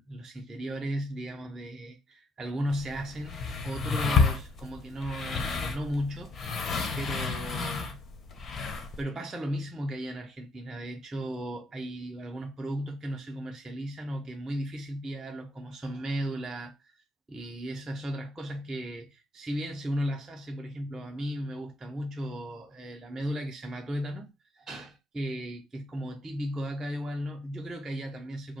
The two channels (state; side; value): normal; both; correlation 0.73